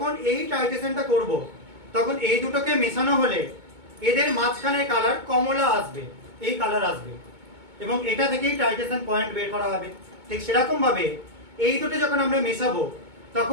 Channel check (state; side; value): late; left; 2.2 ms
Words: এই টাইট্রেশনটা করব তখন এই দুটোকে মেশানো হলে এদের মাঝখানের কালার কমলা আসবে, এই কালার আসবে, এবং এটা থেকেই টাইট্রেশন পয়েন্ট বের করা হবে। ঠিক সেরকম ভাবে এই দুটো যখন আমরা মেশাবো